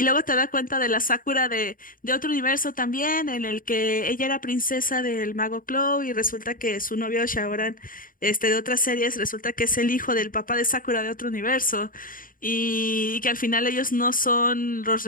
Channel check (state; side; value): late; right; 0.40 ms